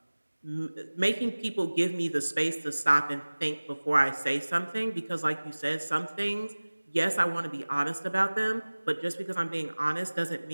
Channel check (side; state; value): both; inverted; correlation -1.00